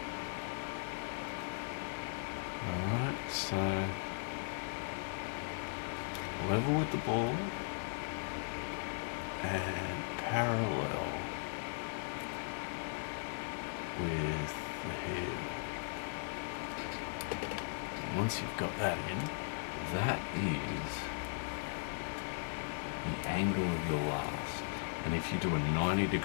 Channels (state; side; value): silent; right; digital silence